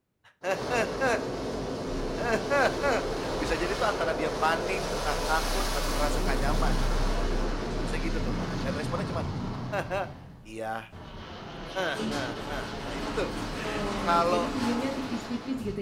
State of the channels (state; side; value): identical; both; correlation 1.00